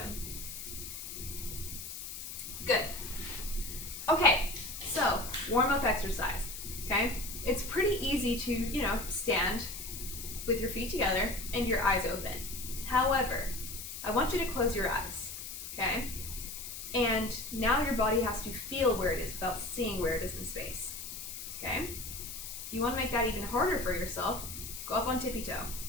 Good. Okay, so warm-up exercise, okay? It's pretty easy to, stand with your feet together and your eyes open. However, I want you to close your eyes, okay? And now your body has to feel where it is without seeing where it is in space, okay? If you want to make that even harder for yourself, go up on tippy-toe.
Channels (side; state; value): left; noise; hiss, 9 dB below the sound